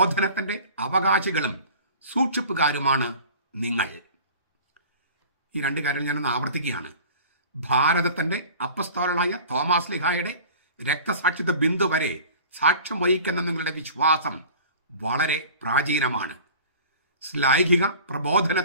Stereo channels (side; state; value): both; inverted; correlation -0.42